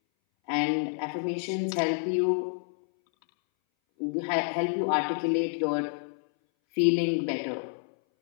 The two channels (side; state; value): right; silent; 59 dB below the other